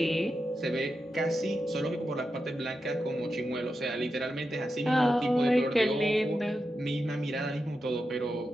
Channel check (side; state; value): both; normal; correlation 0.89